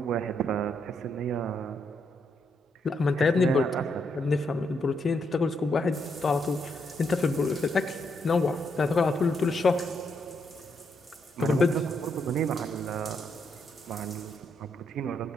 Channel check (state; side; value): normal; both; correlation 0.78